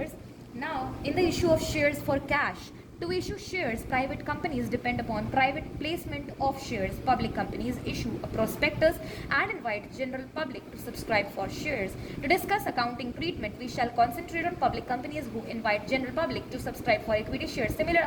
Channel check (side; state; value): both; identical; correlation 1.00